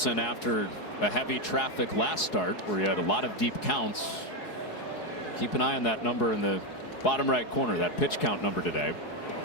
after a heavy traffic last start where he had a lot of deep counts. Keep an eye on that number in the bottom right corner, that pitch count number today.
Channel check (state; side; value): late; right; 4.7 ms